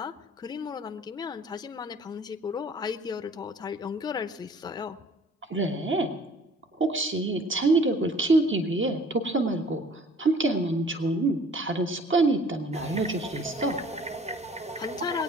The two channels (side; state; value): both; normal; correlation 0.52